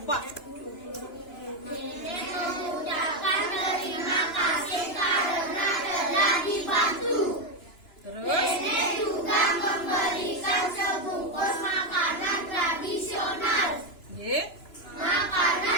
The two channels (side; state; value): right; late; 2.9 ms